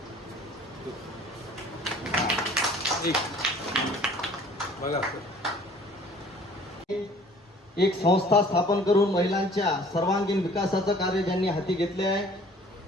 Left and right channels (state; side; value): normal; both; correlation 0.52